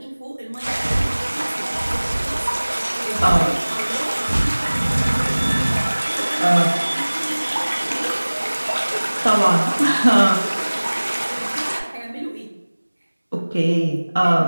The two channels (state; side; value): inverted; both; correlation -1.00